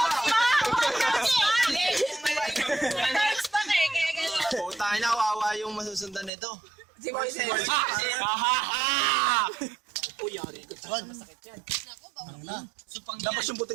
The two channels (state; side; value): drops out; left; at 6.3 s